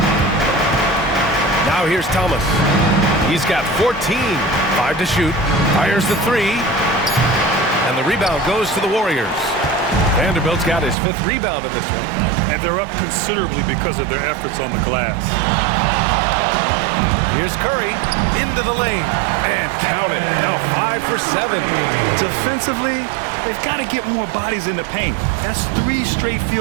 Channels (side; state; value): left; drops out; at 11.0 s